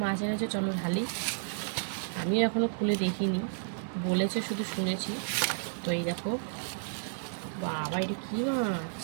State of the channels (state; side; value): silent; left; digital silence